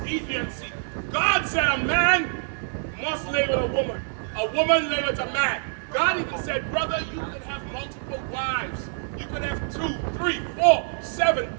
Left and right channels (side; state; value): left; silent; digital silence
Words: Deviancy. God said a man must lay with a woman lay with a man. God even said, brother, you can have multiple wives. You can have 2, 3, 4, 7,